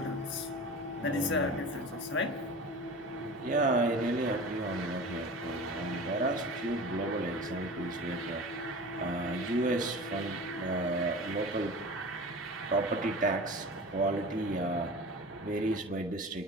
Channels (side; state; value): both; normal; correlation 0.35